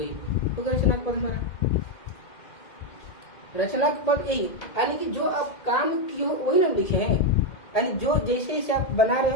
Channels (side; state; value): right; late; 2.1 ms